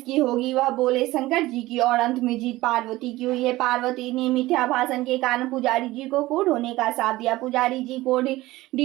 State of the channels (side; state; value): left; quieter; 18.1 dB